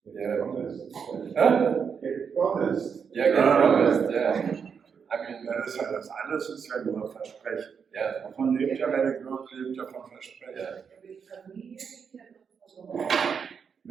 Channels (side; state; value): left; quieter; 6.5 dB